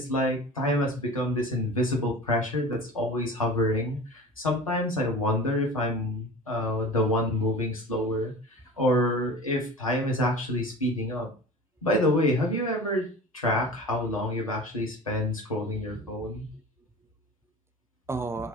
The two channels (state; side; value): normal; both; correlation 0.37